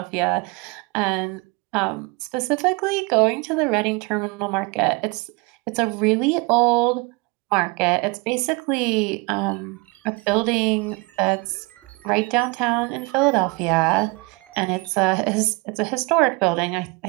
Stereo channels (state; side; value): quieter; left; 27.9 dB